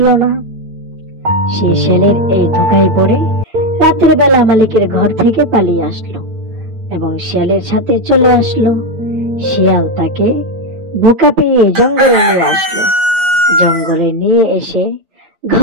না। সে শেয়ালের এই ধোকায় পড়ে রাতের বেলা মালিকের ঘর থেকে পালিয়ে আসলো এবং শিয়ালের সাথে চলে আসলো। শিয়াল তাকে বোকা পেয়ে জঙ্গলে নিয়ে আসলো। জঙ্গলে নিয়ে এসে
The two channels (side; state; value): left; late; 8.9 ms